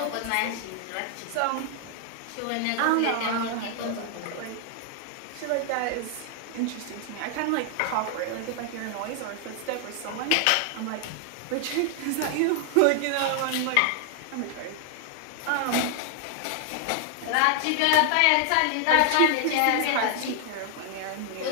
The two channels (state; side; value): different; both; correlation 0.00